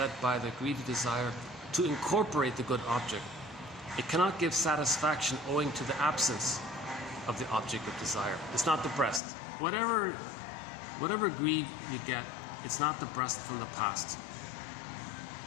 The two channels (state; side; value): drops out; right; at 9.2 s